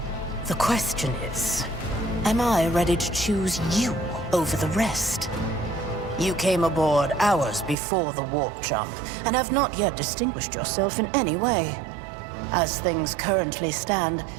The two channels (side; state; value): left; drops out; at 7.8 s